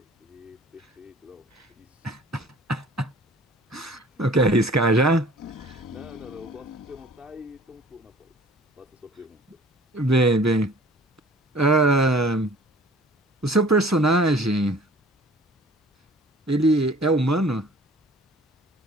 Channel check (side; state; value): both; normal; correlation 0.50